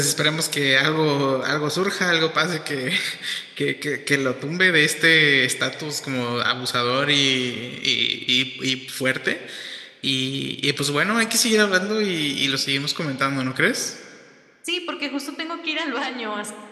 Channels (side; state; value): both; identical; correlation 1.00